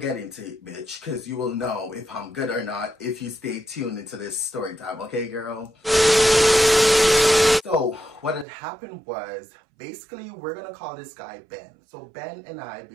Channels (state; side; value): drops out; left; at 8.5 s